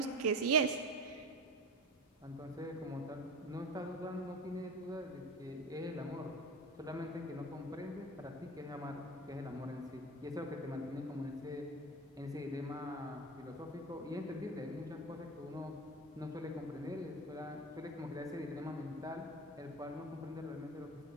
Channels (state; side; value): normal; both; correlation 0.27